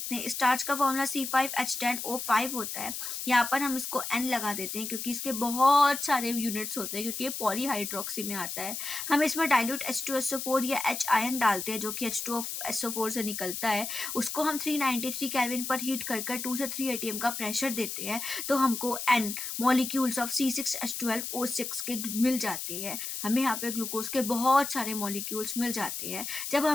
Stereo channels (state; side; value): noise; left; hiss, 5 dB below the sound